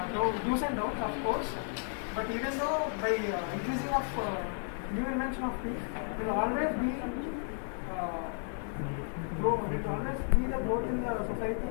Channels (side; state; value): right; silent; 56 dB below the other